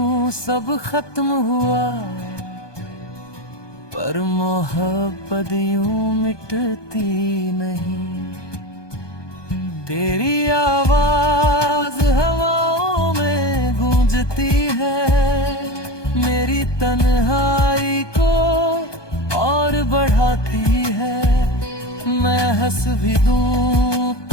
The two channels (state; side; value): late; right; 1.2 ms